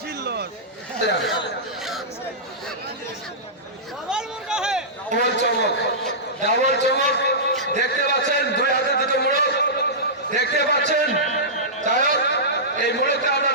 ডাবল চমক, ডাবল চমক দেখতে পাচ্ছেন, 2 হাতে 2টো মোড়ক দেখতে পাচ্ছেন। যাই হোক, এই মোড়কটা আমরা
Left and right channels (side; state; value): both; normal; correlation -0.17